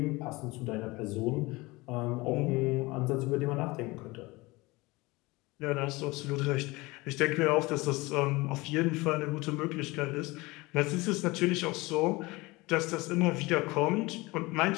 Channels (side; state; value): right; quieter; 22.6 dB